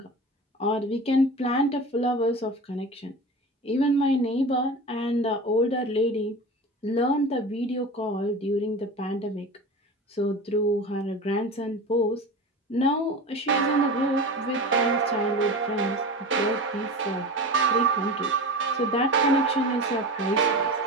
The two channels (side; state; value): both; normal; correlation 0.31